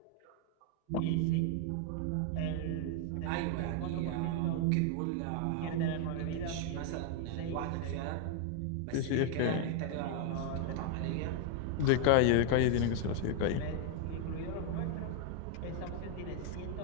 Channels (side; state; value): both; different; correlation 0.00